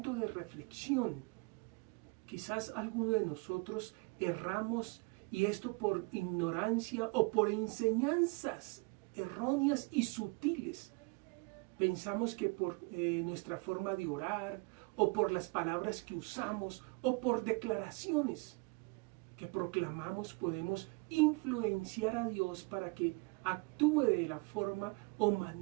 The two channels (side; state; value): left; quieter; 29.9 dB